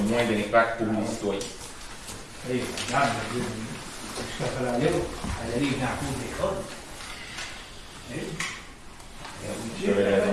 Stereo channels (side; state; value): both; identical; correlation 1.00